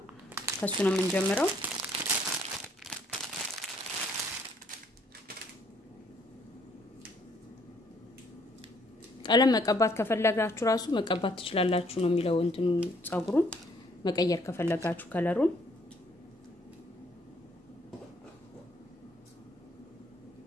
ከሱ ነው የምንጀምረው ቀለም መቀባት ከፈለጋችሁ ራሱ መቀባት ትችላላችሁ ነው የሚለው እንትኑ ጸጉሩን መቀየር ከፈለጋችሁ ከለሩን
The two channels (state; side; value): normal; both; correlation 0.65